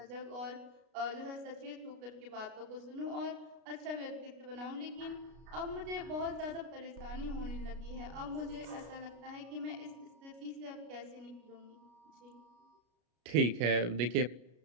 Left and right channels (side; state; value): left; late; 33 ms